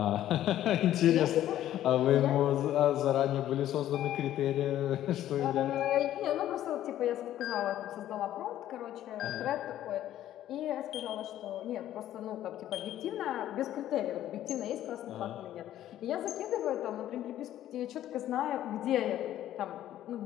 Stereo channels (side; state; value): right; quieter; 12.5 dB